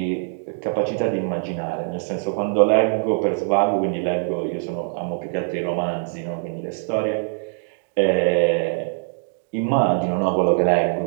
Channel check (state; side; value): silent; left; 56 dB below the other